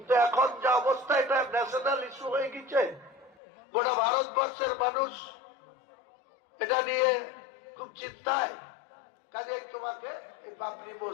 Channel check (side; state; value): right; drops out; at 3.4 s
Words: এখন যা অবস্থা এটা ন্যাশনাল ইস্যু হয়ে গেছে, গোটা ভারতবর্ষের মানুষ এটা নিয়ে খুব চিন্তায়, কাজে তোমাকে এই বাবরি